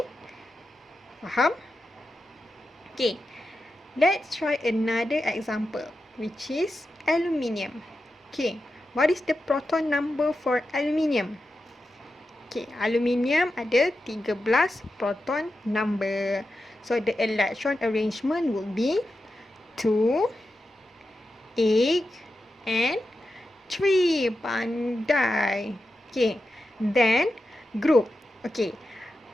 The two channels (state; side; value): normal; both; correlation 0.90